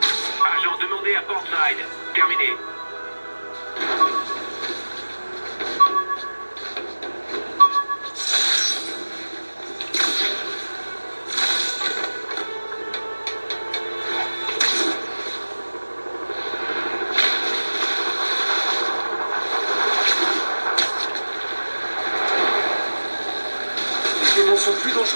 Agent demandé à Portside. Terminé. Les démons sont plus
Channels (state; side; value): inverted; both; correlation -1.00